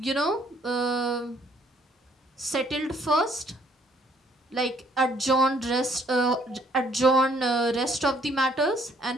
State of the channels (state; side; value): normal; both; correlation 0.64